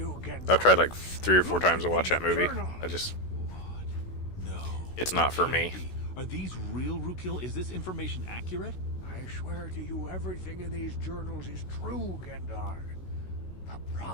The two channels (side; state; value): right; late; 16 ms